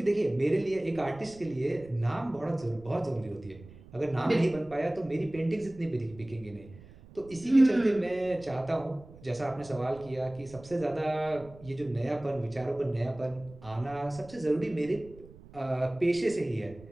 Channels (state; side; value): noise; right; rumble, 20 dB below the sound